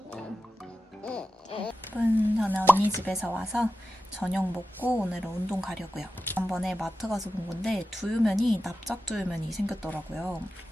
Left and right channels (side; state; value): both; normal; correlation 0.93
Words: 저는 언니 집에서 와서 저녁 먹고 오늘은 운동 가려고요. 지난번에 마트 가서 본 건데 두유면이 납작 두유면이 생겼더라고요.